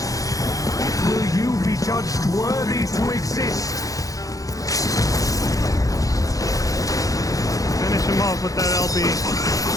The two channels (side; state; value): right; late; 0.17 ms